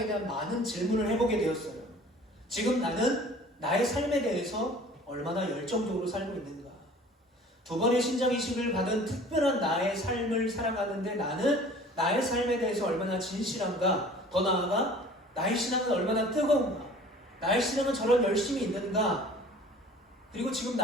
대한 많은 질문을 해보게 되었어요. 지금 나는 나의 삶에 대해서 얼마나 열정적으로 살고 있는가? 두 번의 신장이식을 받은 특별한 나의 삶을 살아가는데 나는 나의 삶에 대해서 얼마나 진실한가? 더 나아가 나의 신앙은 얼마나 뜨거운가? 나의 신앙은 저런 열심이 있는가? 그리고 지금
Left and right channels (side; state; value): both; normal; correlation 0.47